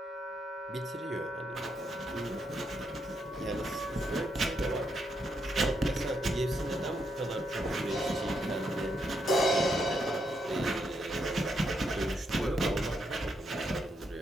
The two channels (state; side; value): normal; both; correlation 0.79